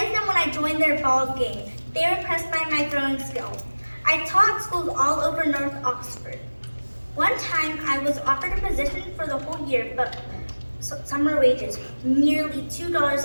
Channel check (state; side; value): inverted; both; correlation -1.00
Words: them when I joined their ball game. They were impressed by my throwing skill. I taught schools all over North Oxford. One time, I was offered a position for the whole year, but summer wages, nearly $2